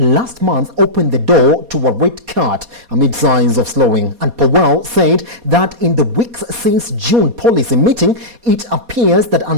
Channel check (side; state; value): left; late; 4.2 ms